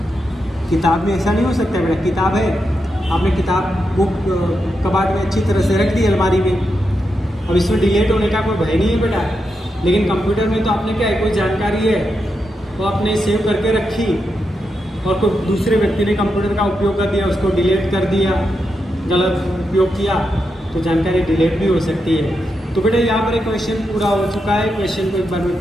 किताब में ऐसा नहीं हो सकता बेटा। किताब है, आपने किताब बुक कबाड़ में अच्छी तरह से रख दी अलमारी में, अब इसमें डिलीट होने का कोई भय नहीं है बेटा। लेकिन कंप्यूटर में तो आपने क्या है, कोई जानकारी है वो आपने सेव करके रखी और कोई दूसरे व्यक्ति ने कंप्यूटर का उपयोग कर दिया, उसको डिलीट कर दिया, गलत उपयोग किया तो जानकारी डिलीट भी हो सकती है। तो बेटा यहाँ पर एक क्वेश्चन पूरा हो चुका है। क्वेश्चन को एक बार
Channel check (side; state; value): both; normal; correlation 0.85